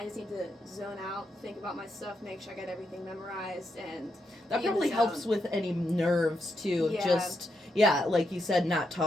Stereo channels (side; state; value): both; normal; correlation 0.82